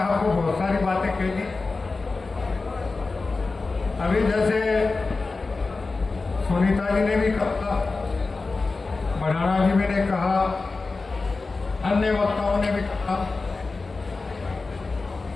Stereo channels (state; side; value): quieter; right; 3.8 dB